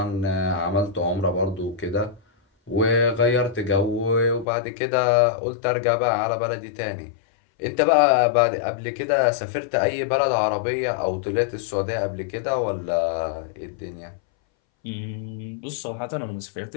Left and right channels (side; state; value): right; drops out; at 4.5 s